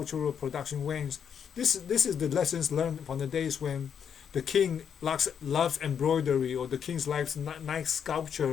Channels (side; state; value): right; quieter; 7.8 dB